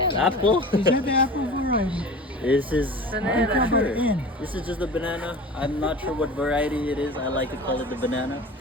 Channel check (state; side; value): normal; both; correlation 0.37